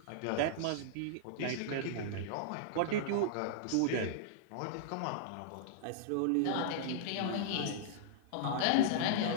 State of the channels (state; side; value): different; both; correlation -0.02